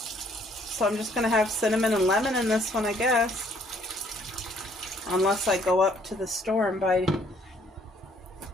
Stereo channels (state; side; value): normal; both; correlation 0.63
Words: I'm just going to have cinnamon and lemon in this one, I guess. Unless I go up to the store and buy